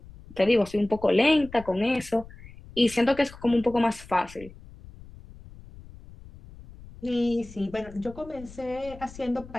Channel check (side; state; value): left; noise; rumble, 18 dB below the sound